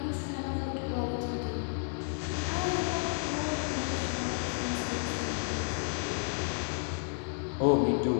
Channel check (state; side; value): silent; right; 57 dB below the other